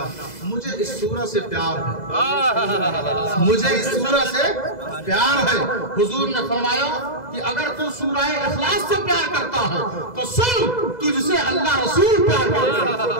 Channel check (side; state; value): right; late; 2.0 ms